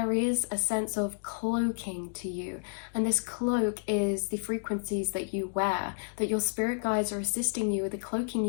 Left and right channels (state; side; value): silent; right; digital silence